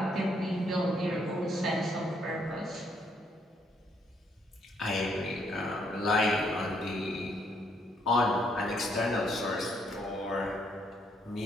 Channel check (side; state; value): both; normal; correlation 0.71